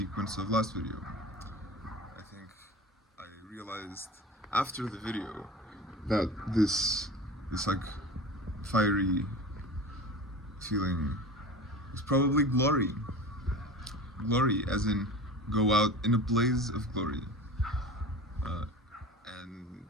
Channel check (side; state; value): both; normal; correlation 0.34